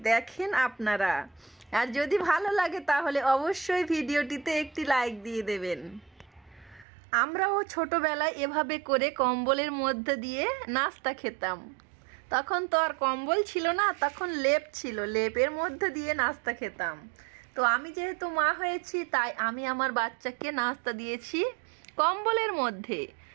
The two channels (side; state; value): left; drops out; at 6.9 s